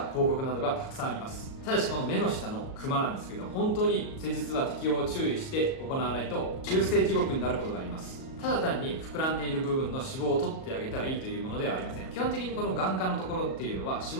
広告などがたくさんあります。ただしこの目の下のクマなんですけど、本当に施術は適用を注意して行わないと中性地獄になることがあります。ただ単に膨らんでいる部分の脂肪を取ってあげたらいいというものではありません。基本的にこの眼科のところっていうのは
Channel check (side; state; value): right; late; 38 ms